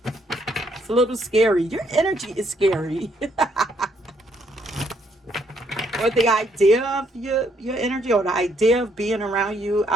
It's a little scary. Your energy is scary. Or the idea of your energy, or the idea of being around you,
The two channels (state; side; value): normal; both; correlation 0.70